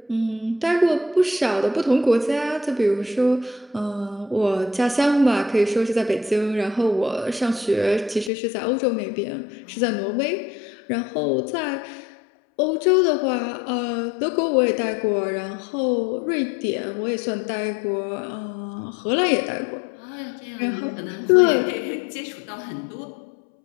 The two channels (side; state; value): right; drops out; at 8.3 s